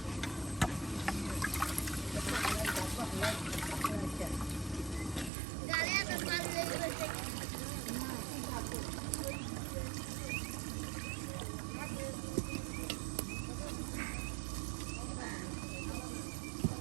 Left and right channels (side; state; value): left; drops out; at 5.3 s